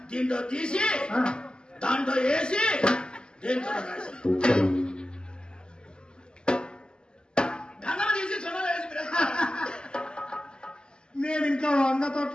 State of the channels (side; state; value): right; late; 0.047 ms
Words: దీంట్లో తీసి దాంట్లో వేసి దేంతో రాసి గంగమ్మ తీసి సొంత వేసి నేను ఇంకా వంగ